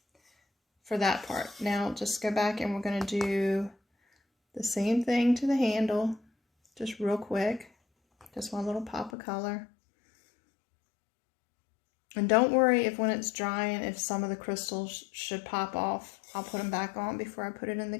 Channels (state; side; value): drops out; right; at 9.1 s